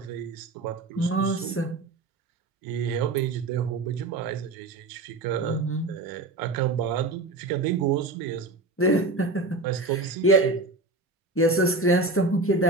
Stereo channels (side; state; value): left; quieter; 3.1 dB